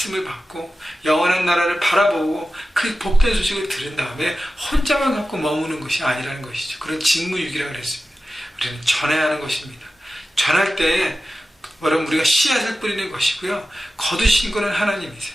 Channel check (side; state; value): both; normal; correlation 0.94